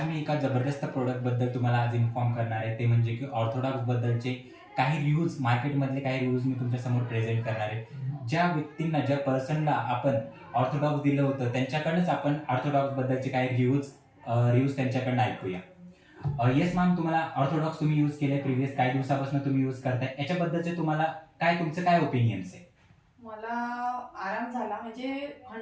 मी एका जबरदस्त प्रोडक्टबद्दल तुम्हाला आज इन्फॉर्म करणार आहे. ते म्हणजे की ऑर्थोडॉक्सबद्दलचे काही रिव्ह्यूज, मार्केटमधले काही रिव्ह्यूज मी तुमच्यासमोर प्रेझेंट करणार आहे. ज्या व्यक्तींना, ज्या पर्सनला आपण ऑर्थोडॉक्स दिलं होतं, त्यांच्याकडनंच आपण ऑर्थोडॉक्सबद्दलचे काही रिव्ह्यूज त्यांच्याकडनं ऐकूया. येस मॅम, तुम्हाला ऑर्थोडॉक्स तुम्ही यूज केले, प्रिव्हियस काही दिवसापासून तुम्ही यूज करताय, याच्याबद्दलचे तुम्हाला तुमचं काय ओपिनियन्स आहे? मला आराम झाला म्हणजे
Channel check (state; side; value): identical; both; correlation 1.00